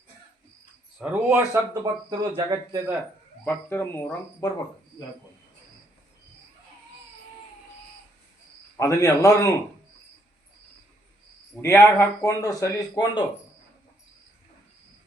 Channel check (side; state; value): both; normal; correlation 0.71